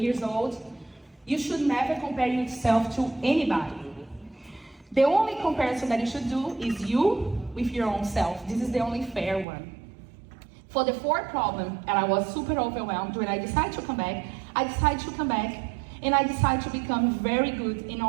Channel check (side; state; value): left; drops out; at 9.5 s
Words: old, you should never compare yourself to anybody. The only comparison that you should do is you with your own self. This is the only fair one. For the 4th problem, and I was super overwhelmed when I decided to come back, and I decided to become very good in